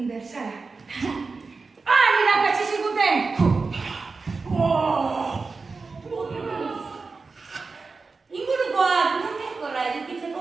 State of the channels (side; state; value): left; quieter; 4.2 dB